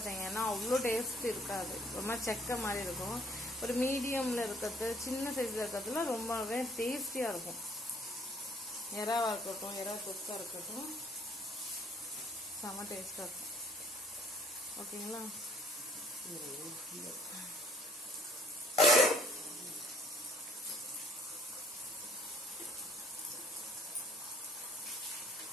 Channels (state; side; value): normal; both; correlation 0.61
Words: அவ்வளோ டேஸ்ட் இருக்காது. ரொம்ப செக்க மாதிரி இருக்கும். ஒரு மீடியமில் இருக்கிறது சின்ன சைஸில் இருக்கிறதுல ரொம்பவே டேஸ்டியாக இருக்கும். எறாவாக இருக்கட்டும் எறா தொக்காக இருக்கட்டும் செம்ம டேஸ்ட்டாக இருக்கும். ஓகேங்களா?